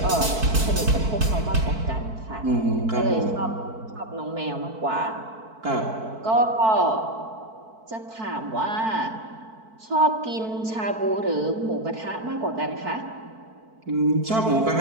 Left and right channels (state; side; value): late; left; 4.5 ms